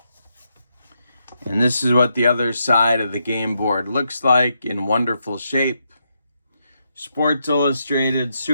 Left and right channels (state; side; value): inverted; both; correlation -0.81